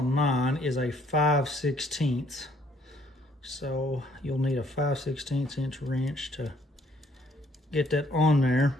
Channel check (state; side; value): normal; both; correlation 0.65